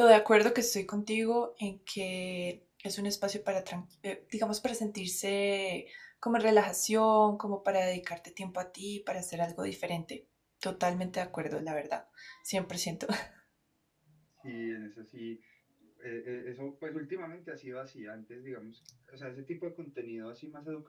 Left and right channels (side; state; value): both; identical; correlation 1.00